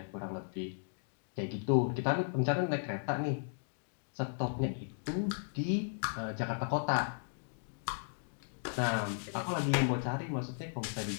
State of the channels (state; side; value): silent; right; digital silence